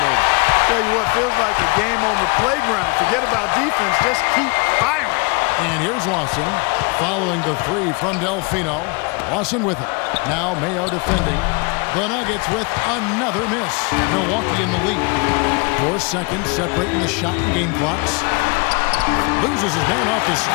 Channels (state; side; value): quieter; right; 30.3 dB